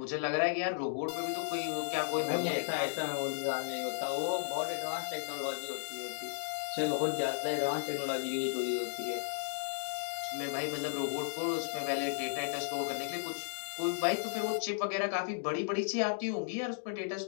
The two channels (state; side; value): silent; right; digital silence